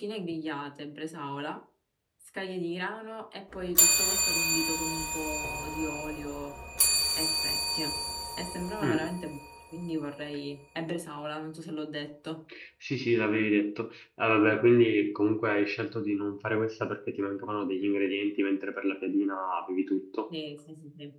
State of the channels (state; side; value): identical; both; correlation 1.00